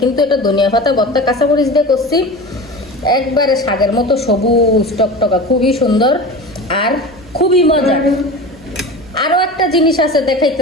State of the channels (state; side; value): normal; both; correlation 0.32